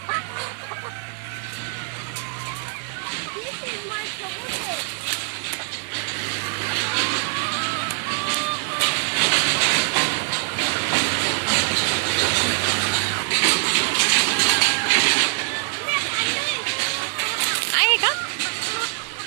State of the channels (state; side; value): silent; left; 55 dB below the other